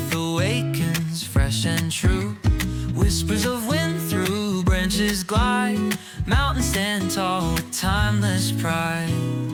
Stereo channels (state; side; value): identical; both; correlation 1.00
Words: awakens fresh and true. Whispers of wind through branches glide, mountains stand tall with timeless pride.